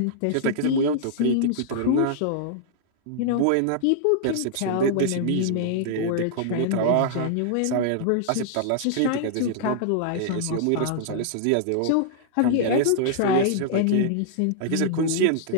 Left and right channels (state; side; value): different; both; correlation -0.01